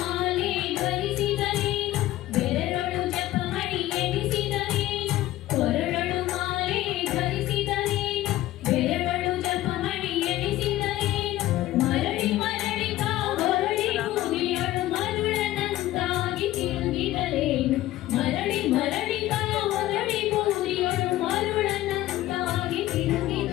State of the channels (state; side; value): quieter; right; 15.3 dB